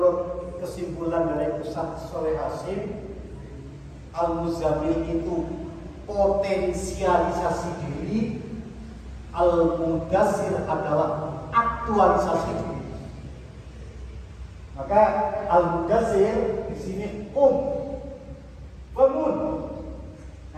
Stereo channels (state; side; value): identical; both; correlation 1.00